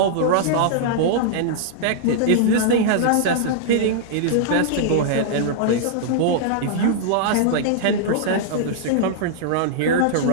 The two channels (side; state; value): both; different; correlation -0.02